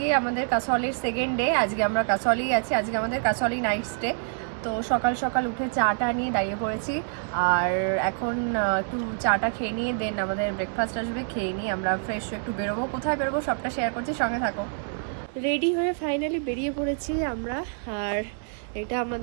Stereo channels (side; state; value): left; silent; 60 dB below the other